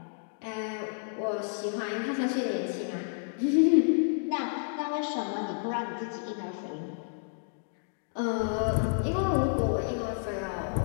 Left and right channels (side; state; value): right; silent; digital silence